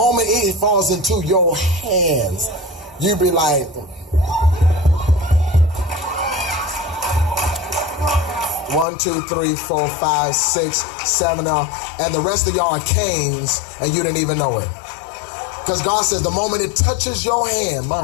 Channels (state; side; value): drops out; right; at 8.8 s